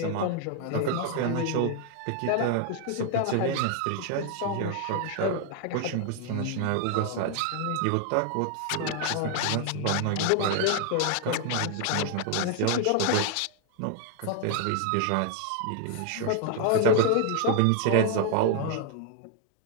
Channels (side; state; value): both; different; correlation 0.00